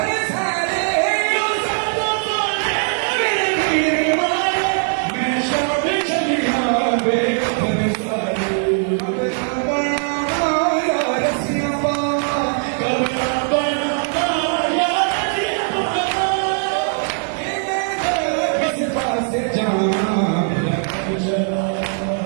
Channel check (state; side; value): silent; left; 58 dB below the other